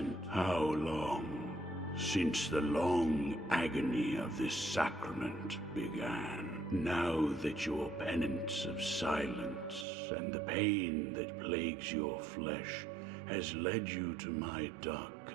How long since the long agony of this sacrament began? Now that your penance of silence and the pain that plagues your flesh has led you to my dark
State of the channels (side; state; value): left; drops out; at 9.9 s